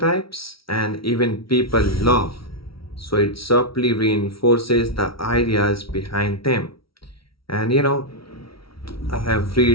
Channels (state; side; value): late; right; 0.75 ms